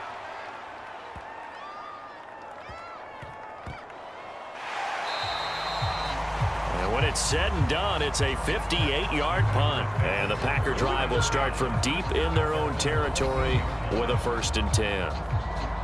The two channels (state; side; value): identical; both; correlation 1.00